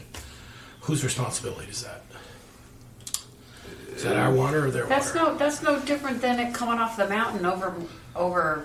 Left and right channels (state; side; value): identical; both; correlation 1.00